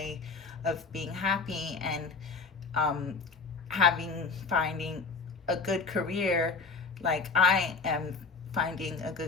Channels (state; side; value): quieter; right; 4.5 dB